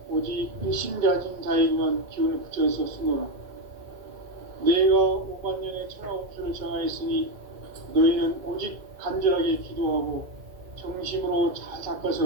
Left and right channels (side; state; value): left; late; 2.0 ms